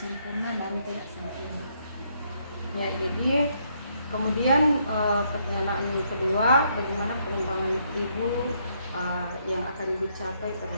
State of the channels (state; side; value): inverted; both; correlation -0.73